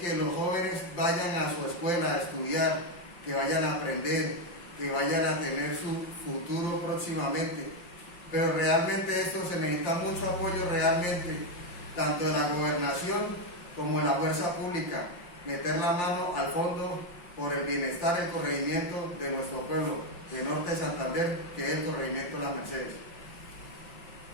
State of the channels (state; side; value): late; right; 5.8 ms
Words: que los jóvenes vayan a su escuela a estudiar, que vayan a aprender, que vayan a tener su futuro próximamente. pero realmente esto se necesita mucho apoyo realmente, tanto de la gobernación como de la fuerza pública, meter la mano al fondo por el bienestar y el corregimiento de nuestro pueblo, de Norte de Santander, que es el corregimiento de Las Mercedes.